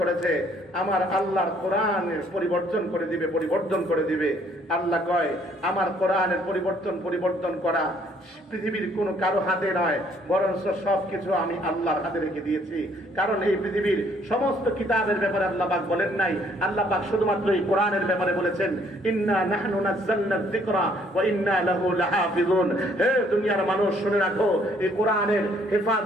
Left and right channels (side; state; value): both; normal; correlation 0.64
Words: আমার আল্লাহর কোরআনের পরিবর্তন করে দিবে, আল্লাহ কয় আমার কোরআনের পরিবর্তন করা পৃথিবীর কোনো কারো হাতে নয়, বরঞ্চ সবকিছু আমি আল্লাহর হাতে রেখে দিয়েছি। কারণ এই পৃথিবীর সমস্ত কিতাবের ব্যাপারে আল্লাহ পাক বলেন নাই, আল্লাহ পাক শুধুমাত্র এই কোরআনের ব্যাপারে বলেছেন ইন্না নাহনু নাযালনা যিকরা ওয়া ইন্না লাহু লাহাফিজুন। হে দুনিয়ার মানুষ, শুনে রাখো, এই কোরআনের